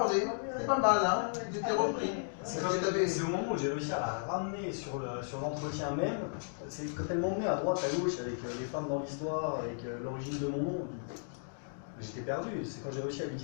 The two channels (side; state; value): right; silent; digital silence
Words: C'est pas mal, hein. Il était repris. C'est au moment où j'ai réussi à la ramener sur l'entretien même. C'est quand elle m'emmenait à droite, à gauche avec les femmes dans l'histoire, avec l'origine de mon nom. J'étais perdu. C'est quand j'ai réussi à lui